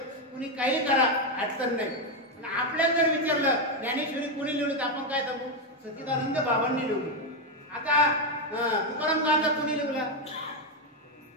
कुणी काही करा अडचण नाही आणि आपल्याला जर विचारलं ज्ञानेश्वरी कोणी लिहिली तर आपण काय सांगू सच्चिदानंद बाबांनी लिहिली आता तुकाराम गांधा कोणी लिहिला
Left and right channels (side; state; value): both; normal; correlation 0.05